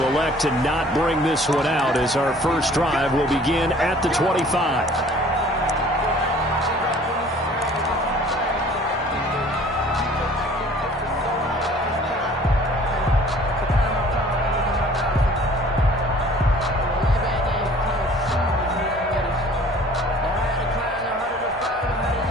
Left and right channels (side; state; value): both; normal; correlation 0.51